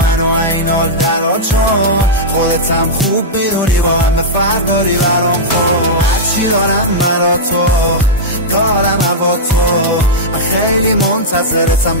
این حال درا، چون خودتم خوب میدونی با همه فرق داری برام. خود هرچی دارم مرا تو دارم هوا تو. من خیلی منتظرتم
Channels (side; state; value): both; normal; correlation -0.08